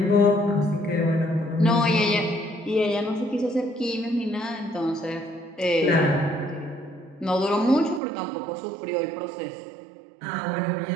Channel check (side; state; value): left; drops out; at 8.0 s